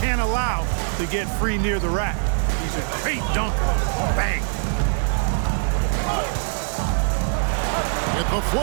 allow to get free near the rack. He's a great dunker. Bang. With the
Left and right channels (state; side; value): silent; left; 64 dB below the other